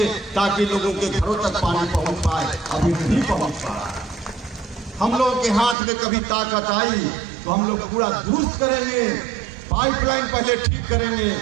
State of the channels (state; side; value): drops out; left; at 5.8 s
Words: ताकि लोगों के घरों तक पानी पहुंच पाए। अभी नहीं पहुंच पा रहा। हम लोगों के हाथ में कभी ताकत आई तो हम लोग पूरा दुरुस्त करेंगे, पाइपलाइन पहले ठीक करेंगे